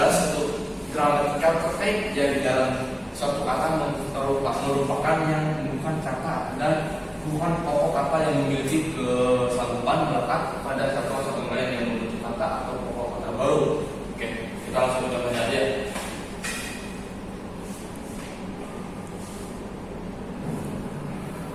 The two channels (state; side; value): identical; both; correlation 1.00